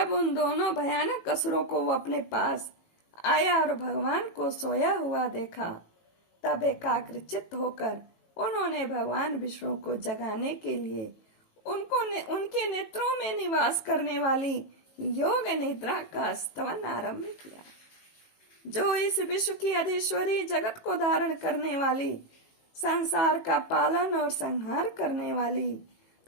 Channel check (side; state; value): right; late; 18 ms